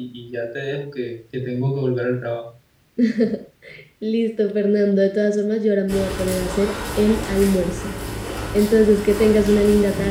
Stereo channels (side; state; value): both; identical; correlation 1.00